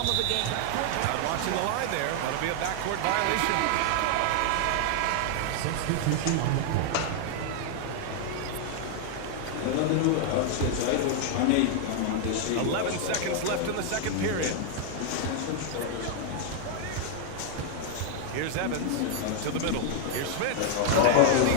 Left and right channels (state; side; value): different; both; correlation 0.00